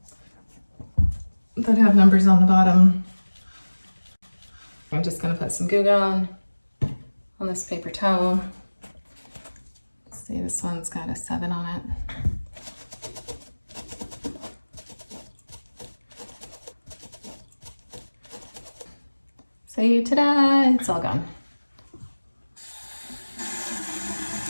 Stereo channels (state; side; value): inverted; both; correlation -1.00